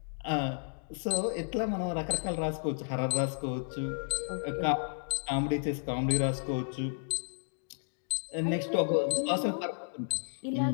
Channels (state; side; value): silent; right; digital silence